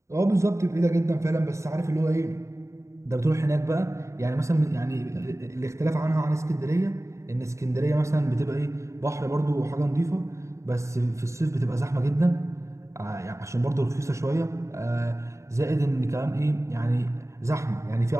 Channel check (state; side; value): late; left; 0.14 ms